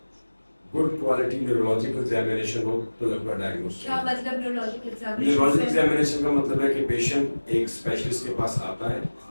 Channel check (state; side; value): inverted; both; correlation -1.00